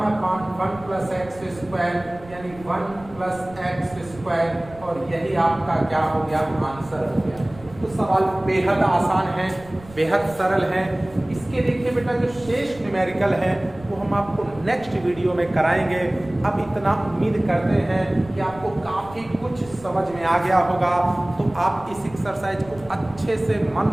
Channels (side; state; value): right; noise; rumble, 20 dB below the sound